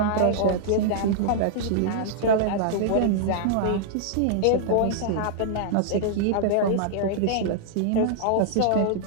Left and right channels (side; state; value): both; different; correlation -0.01